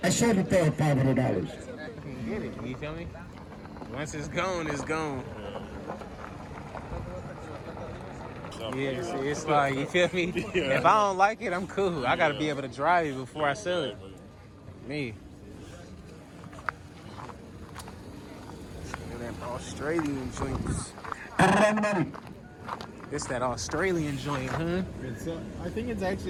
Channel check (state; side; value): identical; both; correlation 1.00